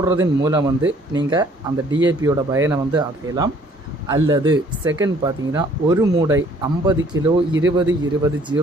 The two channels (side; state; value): both; normal; correlation 0.59